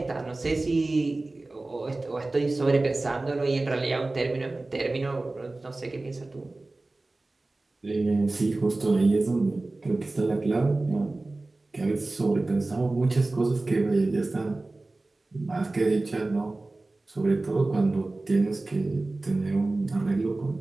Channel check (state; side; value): quieter; left; 3.1 dB